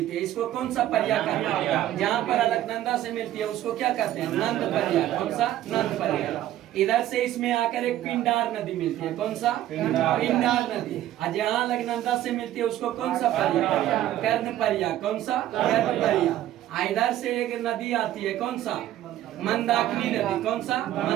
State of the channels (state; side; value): quieter; left; 13.2 dB